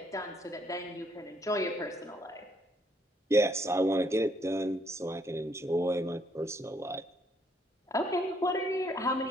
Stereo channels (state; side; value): normal; both; correlation 0.69